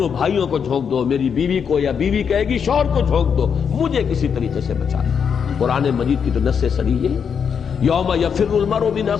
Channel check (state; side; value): quieter; right; 6.9 dB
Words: بھائیوں کو جھونک دو، میری بیوی کو، یا بیوی کہے گی شوہر کو جھونک دو، مجھے کسی طریقے سے بچا لو۔ قرآن مجید کی تو نص صریح ہے، یوم یفر المرء من